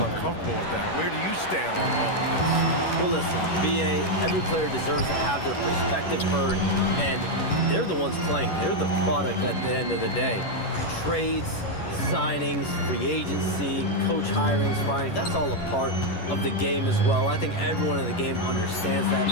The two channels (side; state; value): right; late; 11 ms